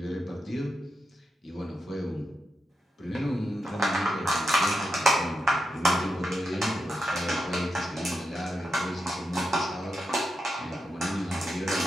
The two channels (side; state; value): both; normal; correlation 0.87